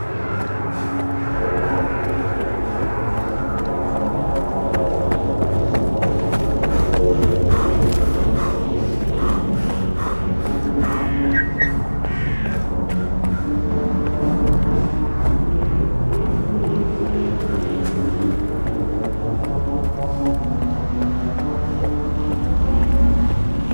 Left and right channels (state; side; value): inverted; both; correlation -1.00